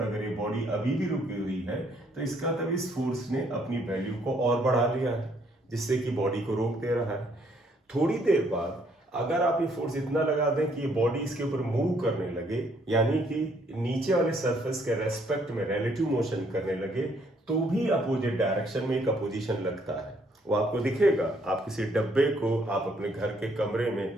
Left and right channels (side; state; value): both; normal; correlation 0.67